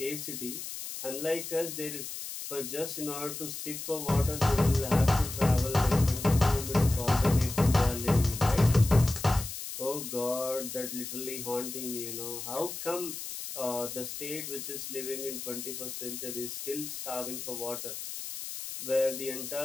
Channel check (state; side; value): noise; left; hiss, 8 dB below the sound